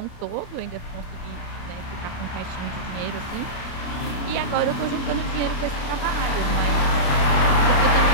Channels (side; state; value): right; late; 29 ms